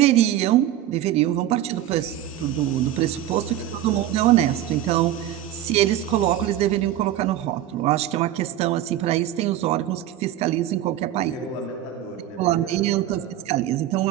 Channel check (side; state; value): left; quieter; 12.3 dB